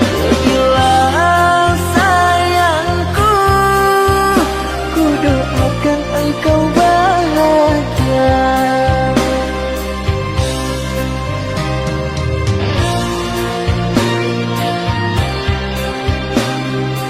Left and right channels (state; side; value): identical; both; correlation 1.00